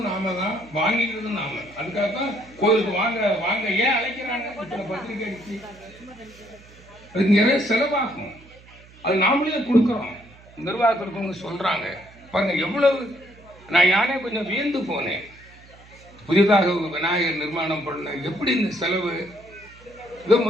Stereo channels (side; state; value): right; noise; hum, 24 dB below the sound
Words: நாம தான், வாங்கிக்கிறதும் நாம. அதுக்காக தான் கோயிலுக்கு வாங்க வாங்க ஏன் அழைக்கிறாங்க, இத்தனை பத்திரிகை அடிச்சு அதுக்கு நிறைய செலவாகும். அது நாமளே கொடுக்குறோம். நிர்வாகத்திற்கு சொல்றாங்க பாருங்க எவ்வளவு. நான் யானே கொஞ்சம் வியந்து போனேன். புதிதாக விநாயகர் நிர்மாணம் பண்ண எப்படி இந்த செலவு. இதோ